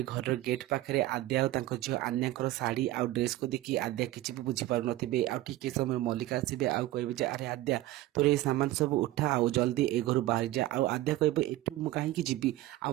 घर गेट पाखे आद्या और झील आन्या शाढ़ी आउ ड्रेस को देखी आद्या किसी भी बुझीपार थे आउ समय मल्लिका आसबे आउ कहे अरे आद्या तोर ये सामान सब उठा आउ जल्दी ए घर बाहर जा आउ आद्या कह एठू कहीं जी आ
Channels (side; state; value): left; quieter; 16.2 dB